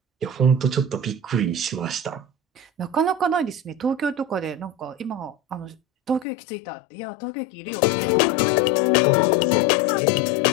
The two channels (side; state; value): right; drops out; at 6.2 s